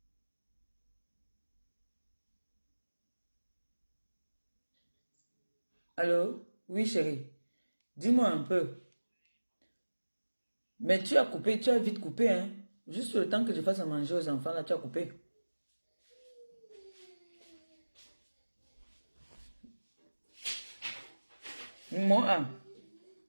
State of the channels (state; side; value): inverted; both; correlation -1.00